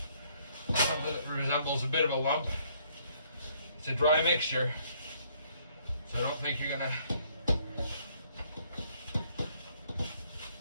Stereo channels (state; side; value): inverted; both; correlation -0.65